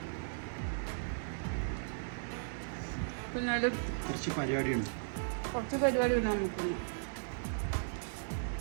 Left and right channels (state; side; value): silent; left; 53 dB below the other